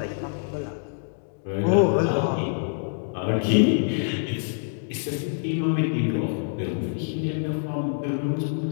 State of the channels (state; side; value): silent; right; digital silence